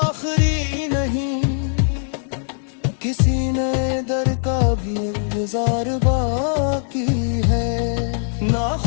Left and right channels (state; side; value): silent; right; digital silence